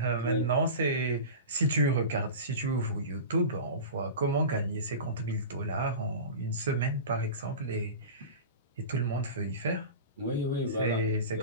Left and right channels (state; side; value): inverted; both; correlation -0.30